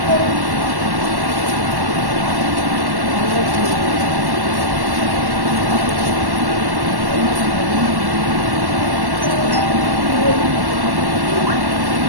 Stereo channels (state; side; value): late; left; 1.1 ms